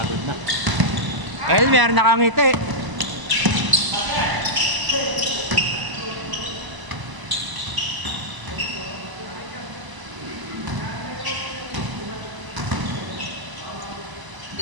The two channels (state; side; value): late; left; 1.0 ms